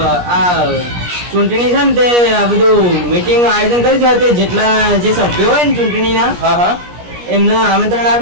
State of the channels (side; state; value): left; late; 17 ms